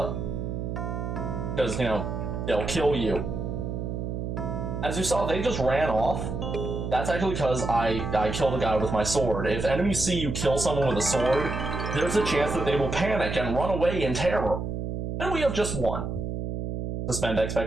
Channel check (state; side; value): noise; right; hum, 4 dB below the sound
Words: you know, they'll kill you. As you saw, they just ran off. That's actually because I killed a guy with my sword. If enemies see you kill someone with a sword, there's a chance that they will panic and run away in terror. And we have just one. Suspend